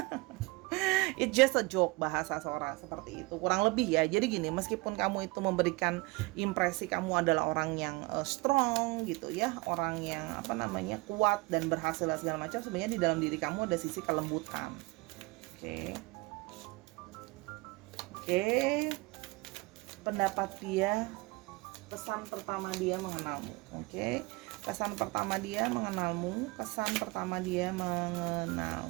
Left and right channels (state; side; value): quieter; left; 24.7 dB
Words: It's just a joke, bahasa Sora seperti itu kurang lebih ya. Jadi gini, meskipun kamu itu memberikan impresi kamu adalah orang yang strong gitu ya, orang yang kuat dan berhasil segala macam, sebenarnya di dalam diri kamu ada sisi kelembutan. Oke. Pendapat dia, kesan pertama dia mengenalmu. Oke. Kesan pertama dia mengenalmu, kesan pertama dia